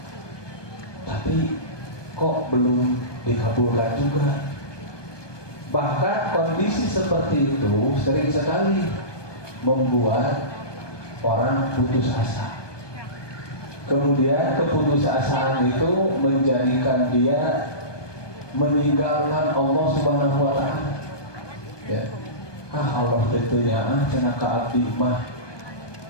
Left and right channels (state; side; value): late; right; 1.2 ms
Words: tapi kok belum dikabulkan juga. Bahkan kondisi seperti itu sering sekali membuat orang putus asa. Kemudian keputusasaan itu menjadikan dia meninggalkan Allah Subhanahu wa taala. Ya. Allah tentunya cenah ka abdi mah.